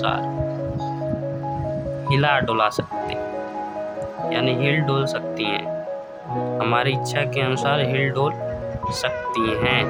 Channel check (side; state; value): both; identical; correlation 1.00